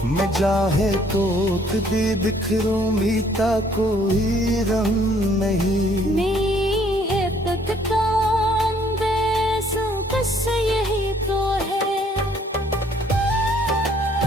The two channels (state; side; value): normal; both; correlation 0.62